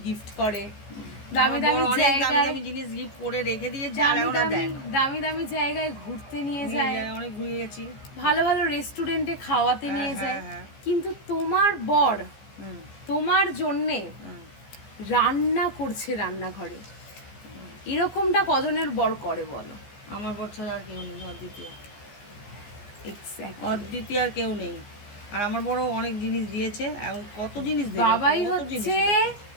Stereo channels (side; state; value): right; late; 15 ms